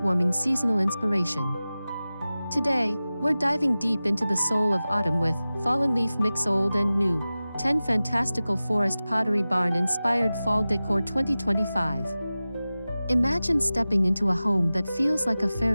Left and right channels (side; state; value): both; inverted; correlation -0.96